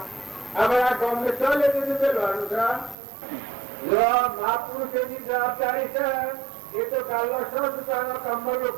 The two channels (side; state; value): left; drops out; at 3.0 s